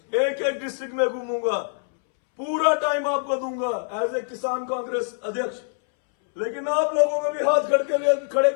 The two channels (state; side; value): silent; right; 63 dB below the other